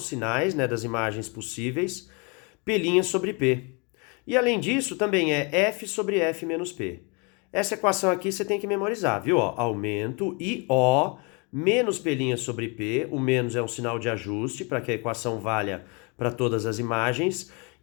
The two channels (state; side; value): quieter; right; 31.9 dB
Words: sinais, né, das imagens possíveis, P' sobre P. E além disso, também é F sobre F menos P. Essa equação aqui você tem que memorizar, viu? Ó, aumento IO menos P' sobre P, o menos é um sinal de ajuste para que a equação valha para todas as imagens,